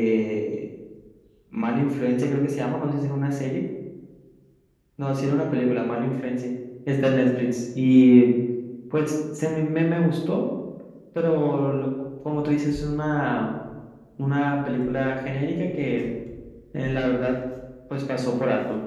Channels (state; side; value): identical; both; correlation 1.00